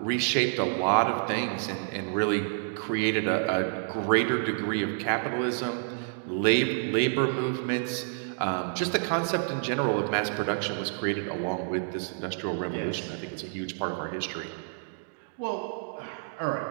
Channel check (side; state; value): left; silent; digital silence